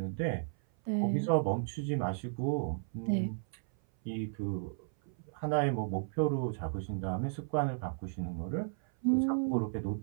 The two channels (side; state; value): left; silent; 55 dB below the other